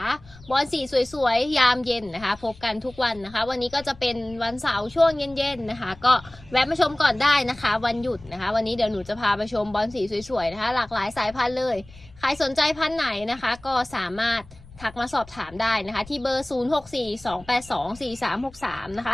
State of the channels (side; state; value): left; noise; rumble, 21 dB below the sound